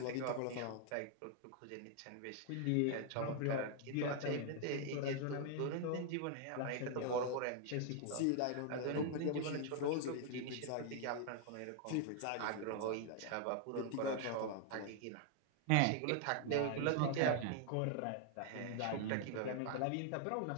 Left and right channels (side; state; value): both; different; correlation 0.00